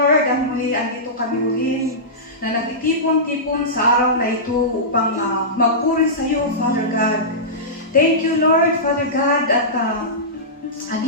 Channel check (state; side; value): normal; both; correlation -0.17